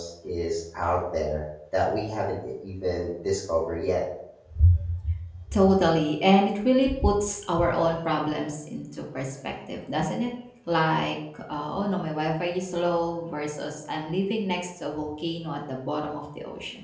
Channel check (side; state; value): both; identical; correlation 1.00